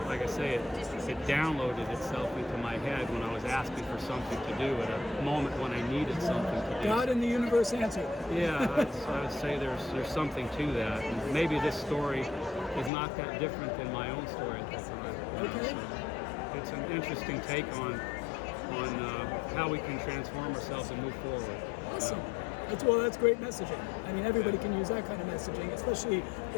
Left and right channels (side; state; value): right; drops out; at 12.9 s